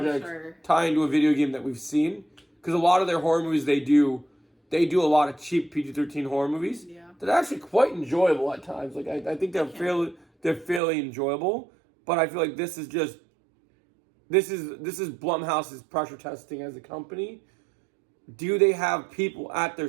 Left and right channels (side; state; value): left; drops out; at 10.8 s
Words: tying to a video game that we've seen. Because a lot of their horror movies, they do a lot of cheap PG-13 horror movies that are actually quite enjoyable at times. Like I think they're fairly enjoyable. But I feel like this is Blumhouse's pressure testing as a company. Do they have people at their